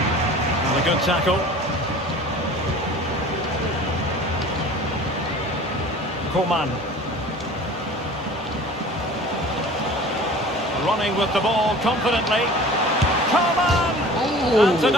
And a good tackle. Coman. Running with the ball confidently. Coman! And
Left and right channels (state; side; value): normal; both; correlation 0.43